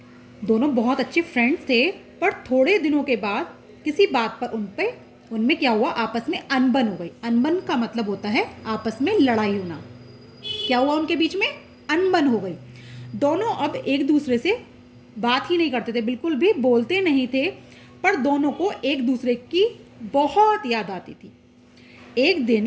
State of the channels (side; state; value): both; identical; correlation 1.00